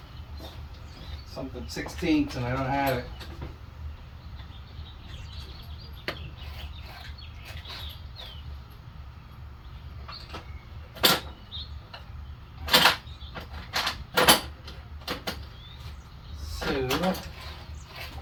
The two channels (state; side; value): identical; both; correlation 1.00